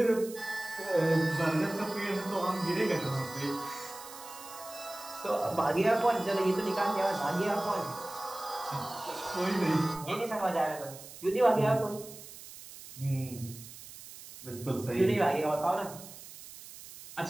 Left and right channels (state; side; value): noise; right; hiss, 15 dB below the sound